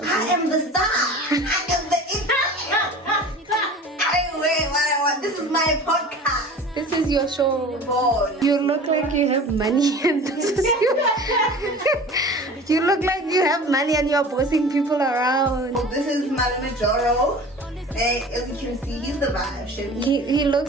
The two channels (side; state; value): both; normal; correlation 0.40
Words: I am the star. I am the This is my podcast. This is your show. Boy. You look like you have money and this is you look like you have money and you're bossing people around. Oh, this is Mwahh Marole. And as you can see, he's the vibe. He